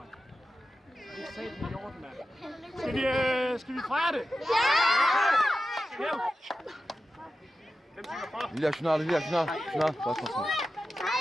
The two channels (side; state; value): both; normal; correlation 0.93